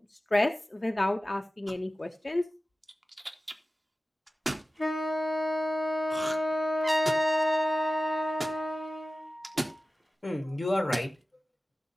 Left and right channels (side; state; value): both; normal; correlation 0.96